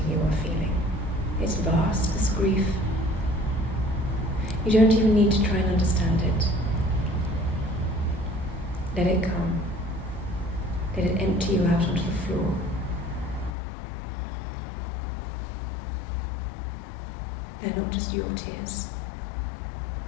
you are feeling. It's vast, this grief. You don't even need to try and understand it. Let it come. Let it empty you out onto the floor. They're not just your tears.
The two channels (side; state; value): right; drops out; at 13.5 s